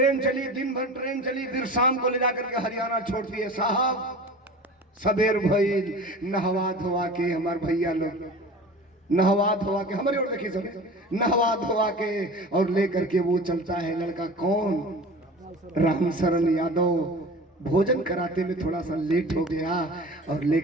चली, दिन भर ट्रेन चली, फिर शाम को ले जाकर के हरियाणा छोड़ती है। साहब सबेर भइल, नहवा धोवा के हमार भैया लोग नहवा धोवा के, हमारी ओर देखिए सब, नहवा धोवा के और लेकर के वो चलता है लड़का कौन, राम शरण यादव। भोजन कराते में थोड़ा सा लेट हो गया और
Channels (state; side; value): normal; both; correlation 0.37